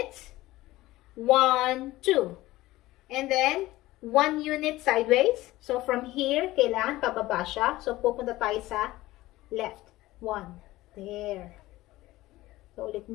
1, 2. And then, 1 unit sideways. So, from here, kailangan pababa siya. So, pupunta tayo sa left. 1. There. So, ulit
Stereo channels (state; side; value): quieter; right; 17.6 dB